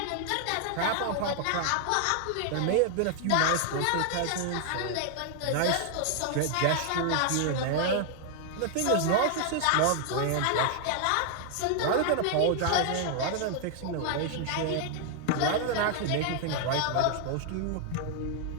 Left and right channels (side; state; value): both; different; correlation 0.00